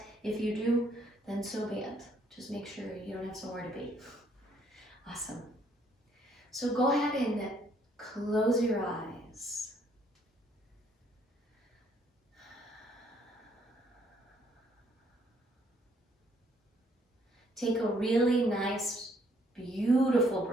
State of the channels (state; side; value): normal; both; correlation 0.67